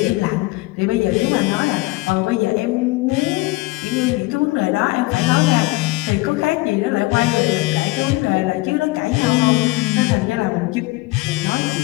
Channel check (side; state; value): right; quieter; 21.9 dB